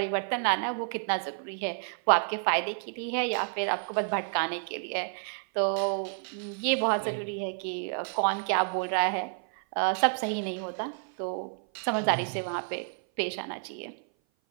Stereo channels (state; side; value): silent; left; 57 dB below the other